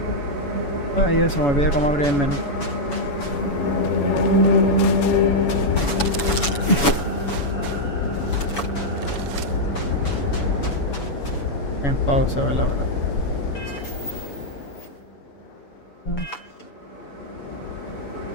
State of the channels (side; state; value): right; late; 7.0 ms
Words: Ay, eso, me olvidé cómo abrir el menú. En pausa, ¿verdad?